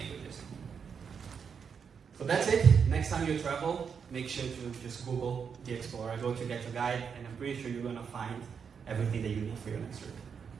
So that's it. Next time you travel, make sure to just Google the Explorer, go to GetYourGuide, and I'm pretty sure you're going to find everything that you need for your next trip.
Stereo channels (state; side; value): quieter; left; 6.6 dB